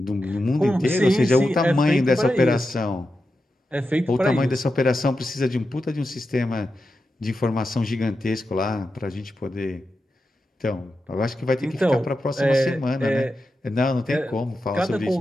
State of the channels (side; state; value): both; normal; correlation 0.89